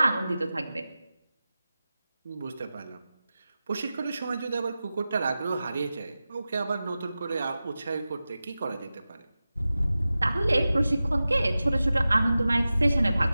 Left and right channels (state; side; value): inverted; both; correlation -0.95